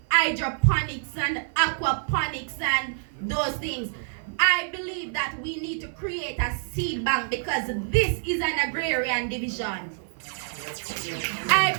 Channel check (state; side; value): silent; left; 58 dB below the other